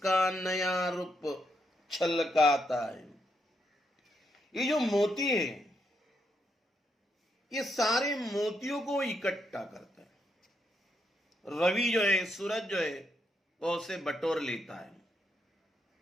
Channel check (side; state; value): both; normal; correlation 0.79